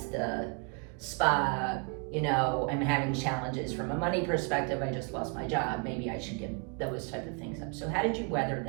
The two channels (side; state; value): left; quieter; 36.1 dB